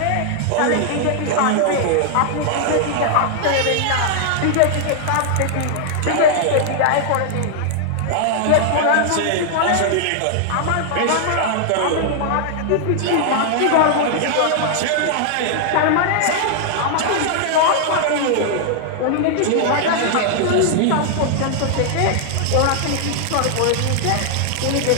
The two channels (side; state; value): both; different; correlation -0.01